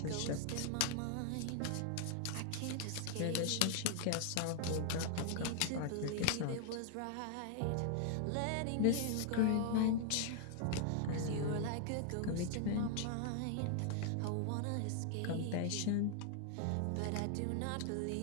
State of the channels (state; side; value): different; both; correlation 0.00